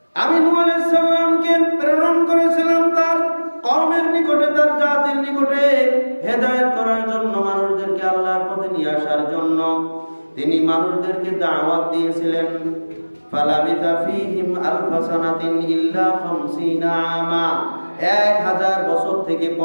আমি নূহ আলাইহিস সালামকে প্রেরণ করেছিলাম তার কওমের নিকটে, তার জাতির নিকটে হেদায়েত করার জন্য, মানুষদেরকে আল্লাহর পথে নিয়ে আসার জন্য। তিনি মানুষদেরকে দাওয়াত দিয়েছিলেন। ফালাবিথা ফীহিম আলফা সানাতিন ইল্লা 50 আমা, 1000 বছর থেকে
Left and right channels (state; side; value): inverted; both; correlation -1.00